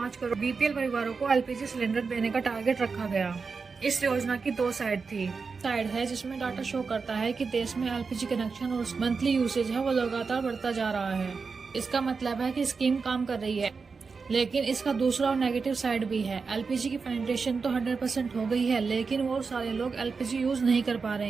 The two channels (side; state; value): left; quieter; 4.9 dB